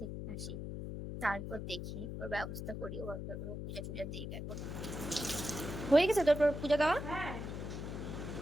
আসি তারপর দেখি ওর ব্যবস্থা করি। ও পূজা টুজা দিই। এখন হয়ে গেছে তোর পূজা দেওয়া?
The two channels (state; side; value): noise; left; hum, 6 dB below the sound